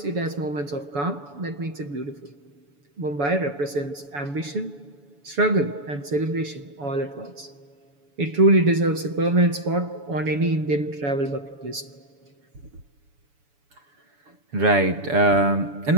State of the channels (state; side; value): late; left; 7.0 ms